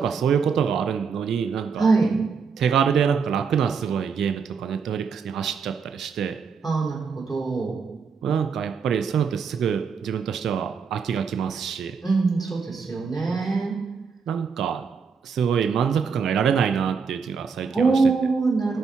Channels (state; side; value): quieter; left; 5.7 dB